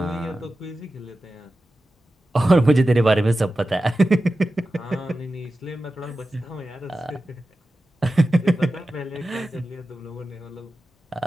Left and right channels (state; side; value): normal; both; correlation 0.93